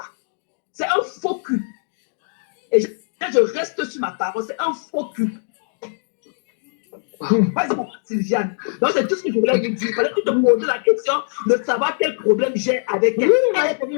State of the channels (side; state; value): right; silent; digital silence